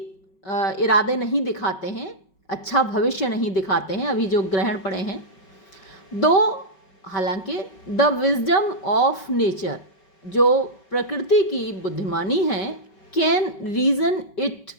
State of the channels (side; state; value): right; late; 5.3 ms